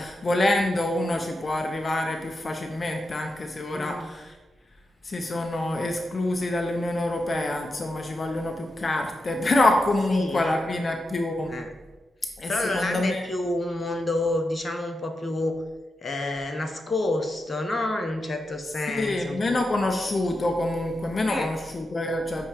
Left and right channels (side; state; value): both; normal; correlation 0.88